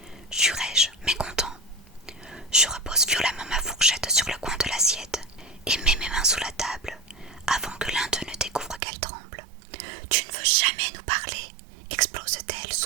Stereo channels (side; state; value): left; drops out; at 8.8 s